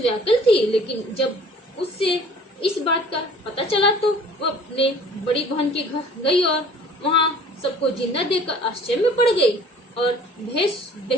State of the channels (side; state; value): both; normal; correlation 0.50